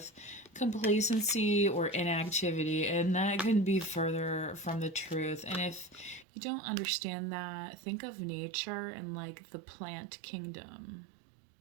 complacency or inactivity, and that couldn't be further from the truth. And if you don't understand that, think of nature and like the plant kingdom,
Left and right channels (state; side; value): drops out; left; at 6.2 s